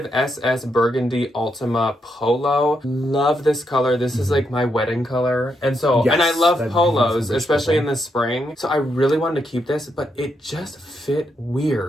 SS Burgundy Ultima Polo. Love this color. This is like my wedding color, and I love polos, especially in the spring. So I really wanted to keep this, but it just fit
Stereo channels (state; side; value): normal; both; correlation 0.80